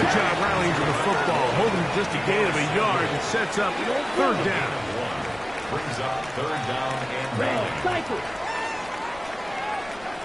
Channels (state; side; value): noise; left; rumble, 22 dB below the sound